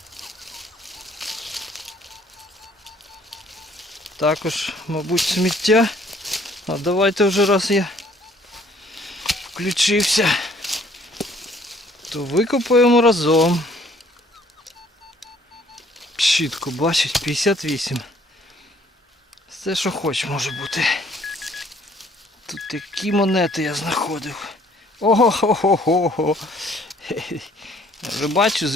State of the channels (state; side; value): normal; both; correlation 0.60